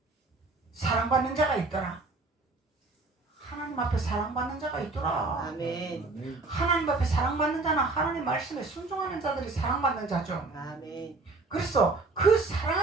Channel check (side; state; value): left; quieter; 3.6 dB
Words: 사랑받는 자가 있더라. 하나님 앞에 사랑받는 자가 있더라. 아멘. 하나님 앞에 사랑받는 자는 하나님 말씀에 순종하는 자들이 사랑받는 자죠. 아멘. 그래서 그